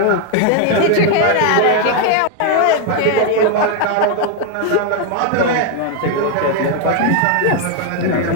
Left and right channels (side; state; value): both; different; correlation 0.01